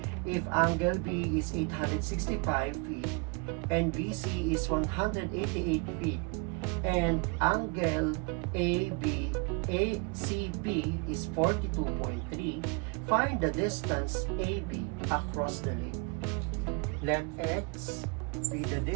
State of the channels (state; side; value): quieter; left; 32.2 dB